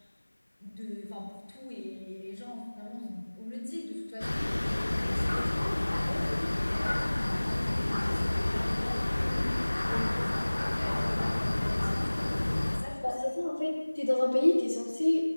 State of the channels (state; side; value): inverted; both; correlation -1.00